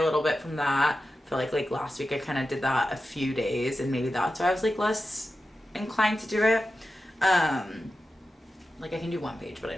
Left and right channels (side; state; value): both; normal; correlation 0.92